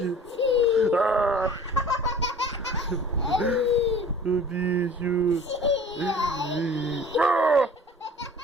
Ah. O bicho. Ah.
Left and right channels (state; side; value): normal; both; correlation 0.45